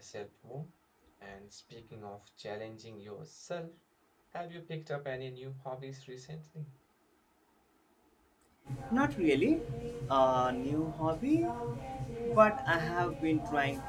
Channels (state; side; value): identical; both; correlation 1.00